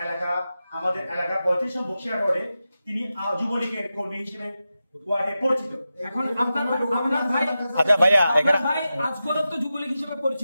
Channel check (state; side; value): inverted; both; correlation -0.92